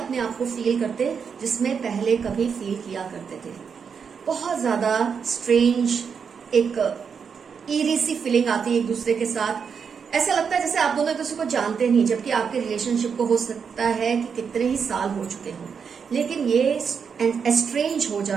आप को फील करते जिसमें पहले कभी फील किया करते थे। बहुत ज्यादा स्ट्रेंज एक ईरी सी फीलिंग आती है एक दूसरे के साथ। ऐसा लगता है जैसे आप दोनों एक दूसरे को जानते नहीं, जबकि आपके रिलेशनशिप को हो सकता है कि कितने ही साल हो चुके हों। लेकिन ये एस्ट्रेंज हो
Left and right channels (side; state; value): left; quieter; 6.4 dB